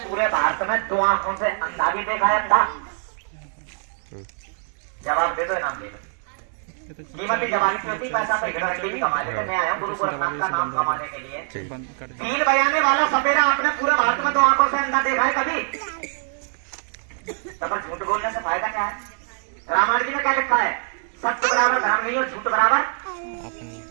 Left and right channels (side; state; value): left; silent; 56 dB below the other